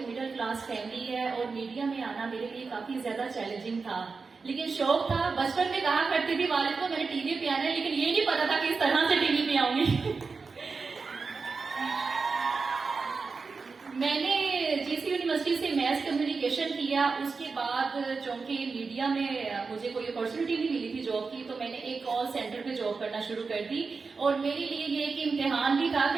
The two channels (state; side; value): quieter; left; 4.6 dB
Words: क्लास फैमिली है और मीडिया में आना मेरे लिए काफी ज्यादा चैलेंजिंग था, लेकिन शौक था। बचपन में कहा करती थी वालिद को मैंने टीवी पे आना है, लेकिन ये नहीं पता था कि इस तरह से टीवी पे आऊंगी। मैंने जीसी यूनिवर्सिटी से मैथ कम्युनिकेशन किया। उसके बाद चूंकि मीडिया में मुझे कोई अपॉर्चुनिटी नहीं मिली थी जॉब की, तो मैंने एक कॉल सेंटर पे जॉब करना शुरू कर दी। और मेरे लिए ये एक इम्तिहान भी था